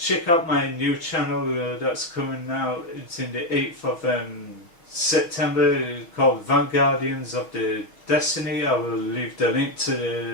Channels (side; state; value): right; late; 6.1 ms